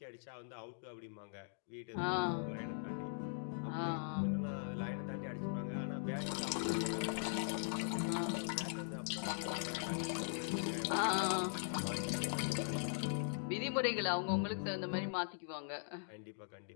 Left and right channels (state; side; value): silent; right; digital silence